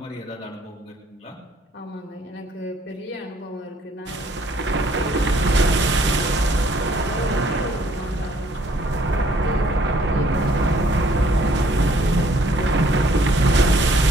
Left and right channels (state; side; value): normal; both; correlation 0.62